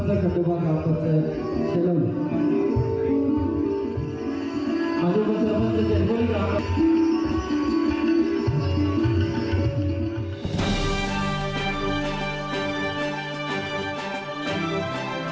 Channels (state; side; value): identical; both; correlation 1.00